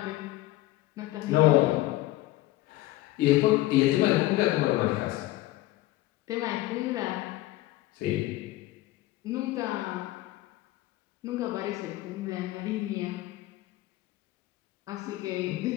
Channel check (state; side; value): quieter; right; 17.2 dB